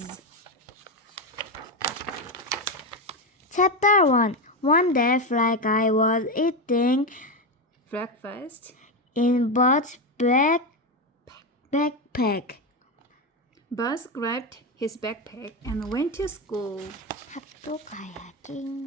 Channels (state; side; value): normal; both; correlation 0.12